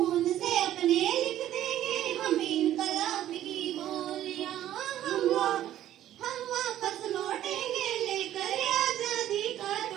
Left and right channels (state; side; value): quieter; left; 12.4 dB